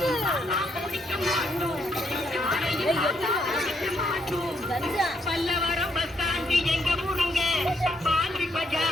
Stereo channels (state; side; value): normal; both; correlation 0.74